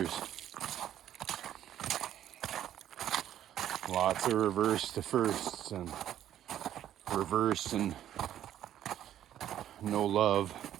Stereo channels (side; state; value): left; quieter; 11.3 dB